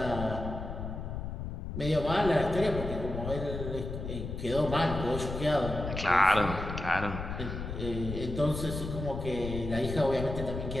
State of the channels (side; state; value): left; noise; rumble, 6 dB below the sound